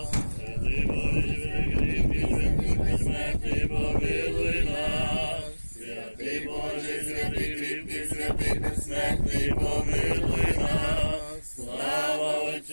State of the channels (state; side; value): inverted; both; correlation -1.00